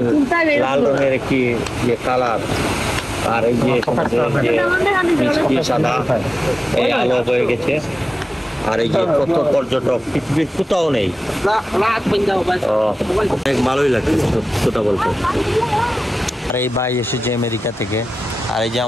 লাল রঙের একটি যে কালার, আর এই যে মিষ্টি সাদা এই আলো হয়ে গেছে, আর এই যে কত পর্যটক পৃথিবীর কোথাও নেই, অনেক ভালোই লাগছে কথা বলতে। আর এই ভাই এসেছে আমেরিকা থেকে, আর এই যে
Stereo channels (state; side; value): normal; both; correlation 0.95